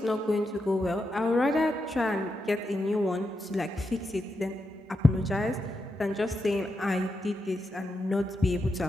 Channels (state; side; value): normal; both; correlation 0.86